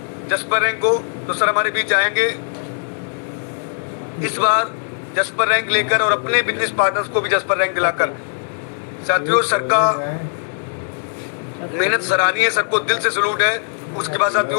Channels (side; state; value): right; silent; digital silence